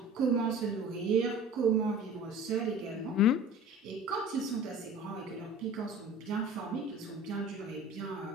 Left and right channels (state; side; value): normal; both; correlation 0.41